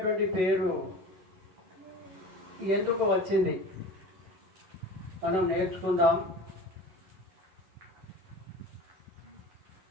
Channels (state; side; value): late; left; 11 ms